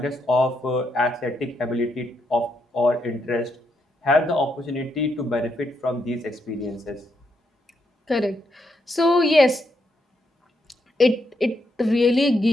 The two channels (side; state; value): both; normal; correlation 0.79